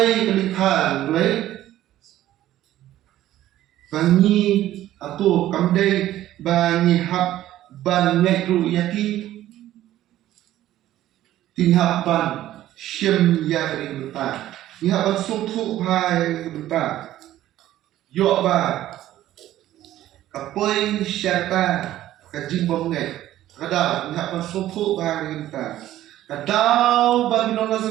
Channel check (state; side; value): quieter; left; 13.7 dB